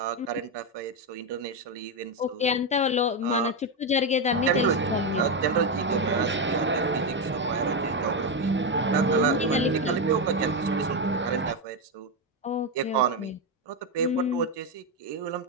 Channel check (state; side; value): normal; both; correlation 0.07